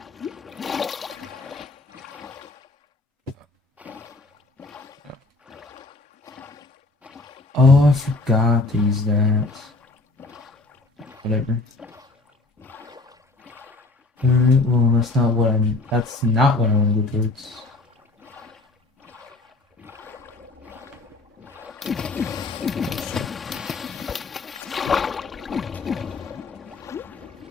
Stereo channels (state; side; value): quieter; right; 3.2 dB